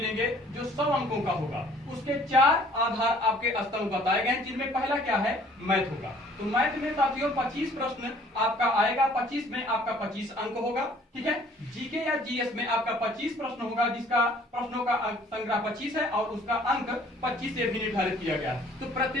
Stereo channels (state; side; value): normal; both; correlation 0.56